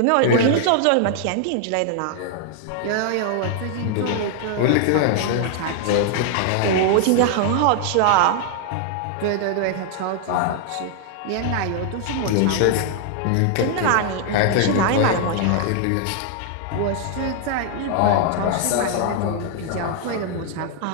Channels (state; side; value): different; both; correlation 0.00